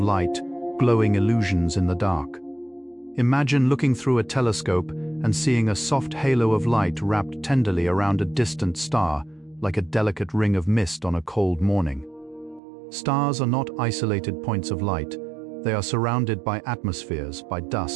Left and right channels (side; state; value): left; drops out; at 12.6 s